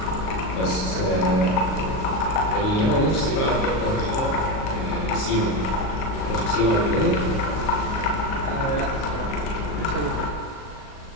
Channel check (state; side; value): late; right; 38 ms